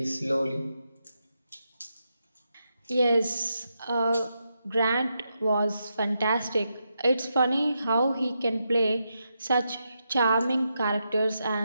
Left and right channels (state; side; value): inverted; both; correlation -0.84